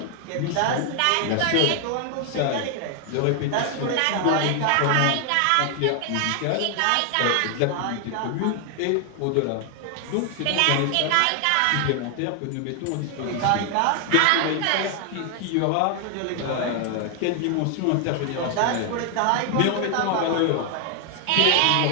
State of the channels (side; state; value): both; different; correlation 0.00